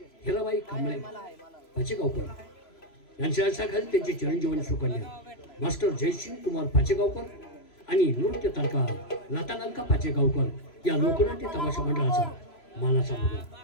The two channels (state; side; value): late; right; 3.0 ms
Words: हिराबाई कांबळे पाचेगावकर यांच्या खाली त्यांची चिरंजीवन सुकन्या मास्टर जयसिंग कुमार पाचेगावकर आणि नृत्य तारका लतालंका पाचेगावकर या लोकनाट्य तमाशा मंडळाचा मानाचा मुलगा